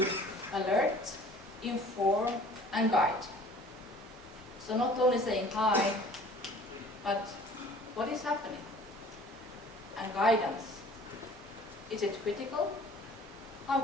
alert, inform, and guide. So not only saying hi, but what is happening? And guidance. Is it critical? How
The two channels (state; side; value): normal; both; correlation 0.49